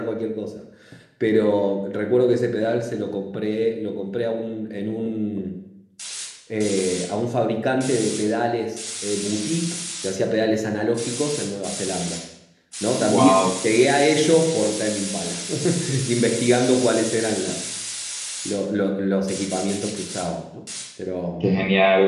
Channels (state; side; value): identical; both; correlation 1.00